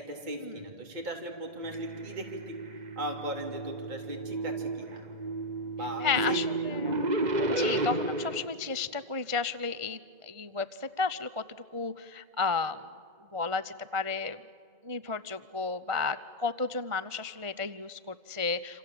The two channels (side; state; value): left; late; 1.5 ms